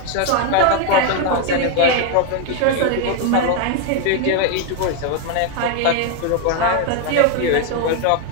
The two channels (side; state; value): both; different; correlation 0.01